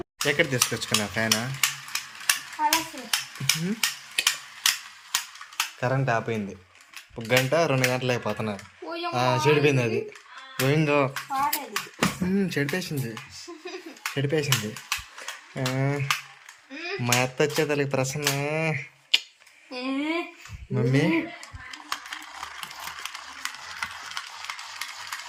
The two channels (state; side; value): identical; both; correlation 1.00